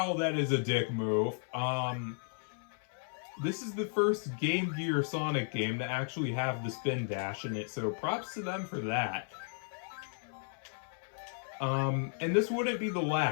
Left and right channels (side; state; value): right; silent; 55 dB below the other